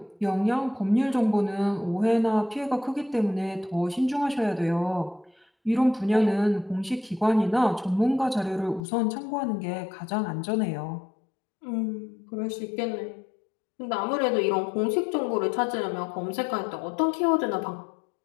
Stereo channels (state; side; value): drops out; right; at 8.8 s